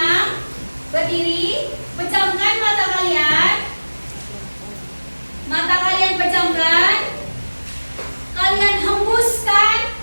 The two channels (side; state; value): both; inverted; correlation -1.00